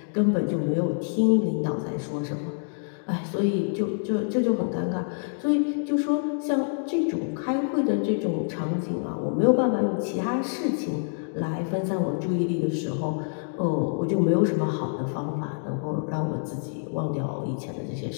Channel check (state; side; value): silent; right; digital silence